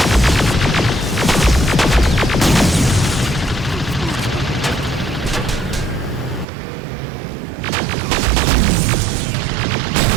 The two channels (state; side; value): drops out; left; at 6.5 s